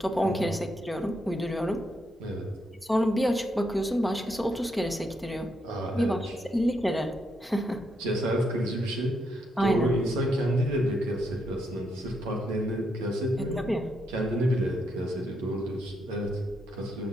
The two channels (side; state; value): both; normal; correlation 0.79